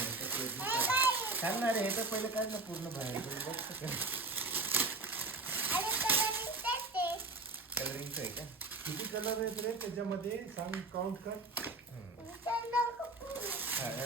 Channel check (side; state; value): left; quieter; 3.2 dB